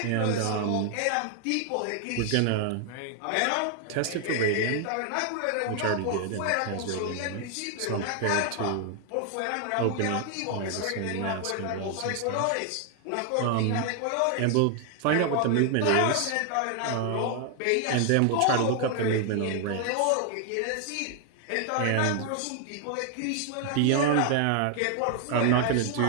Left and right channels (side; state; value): both; different; correlation 0.00